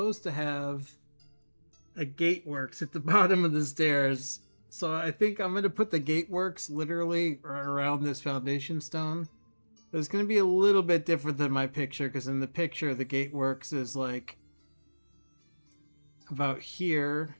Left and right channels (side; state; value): both; inverted; correlation -1.00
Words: to have a gateworks at the bottom of the stairs. So I think I'm going to put the gateworks literally around this foundation stone. It's going to be a little bit different than my picture, because in the picture the gateworks is like about here.